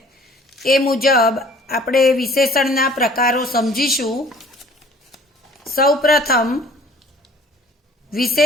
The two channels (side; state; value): both; normal; correlation 0.52